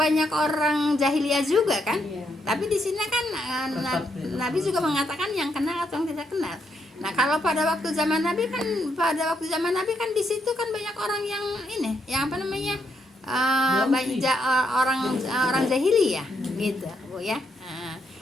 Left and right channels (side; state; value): both; normal; correlation 0.77